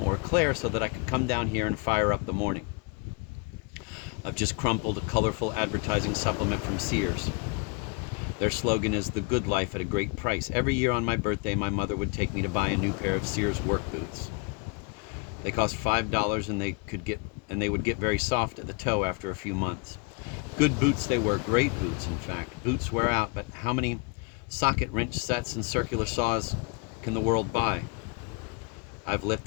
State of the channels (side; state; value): right; quieter; 32.1 dB